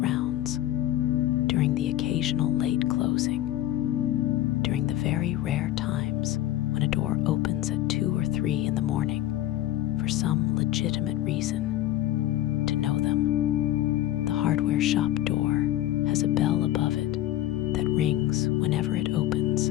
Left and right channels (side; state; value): right; quieter; 13.8 dB